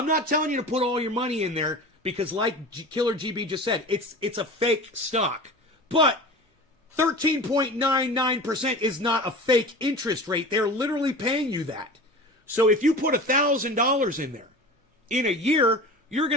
not telling you to put all your money in there because, like Killer GB just said, it's a fake stock. But 13.99% is not a fake interest rate. They're literally paying you that. So if you put $1,000 in there in a year, you're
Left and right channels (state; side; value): normal; both; correlation 0.35